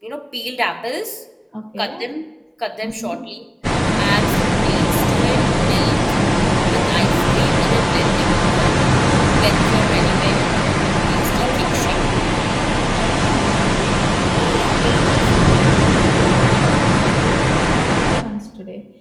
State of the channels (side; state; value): both; identical; correlation 1.00